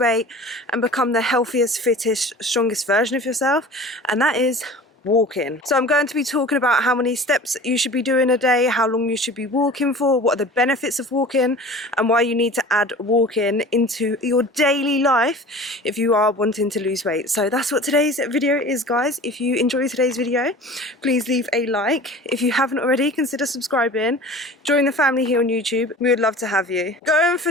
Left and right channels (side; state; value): both; normal; correlation 0.40